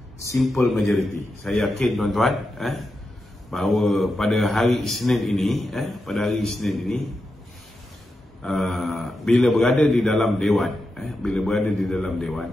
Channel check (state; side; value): normal; both; correlation 0.88